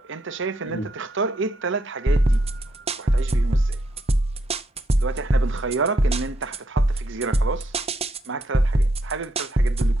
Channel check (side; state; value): both; normal; correlation 0.76